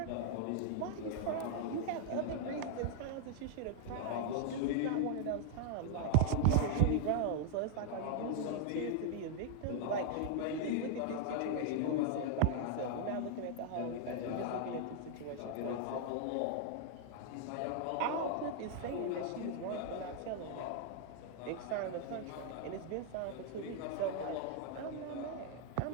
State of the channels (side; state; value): both; different; correlation -0.01